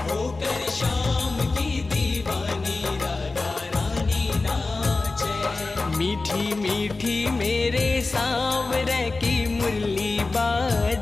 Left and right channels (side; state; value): right; quieter; 3.5 dB